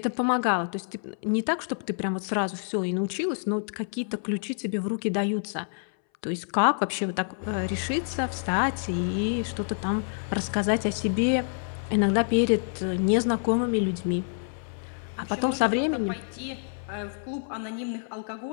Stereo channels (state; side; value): silent; right; 60 dB below the other